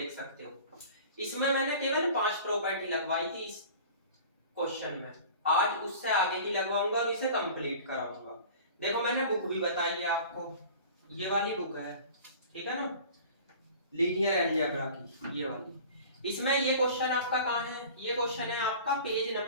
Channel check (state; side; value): inverted; both; correlation -0.42